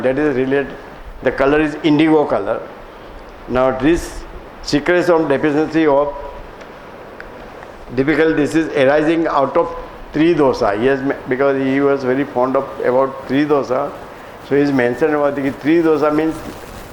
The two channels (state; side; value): identical; both; correlation 1.00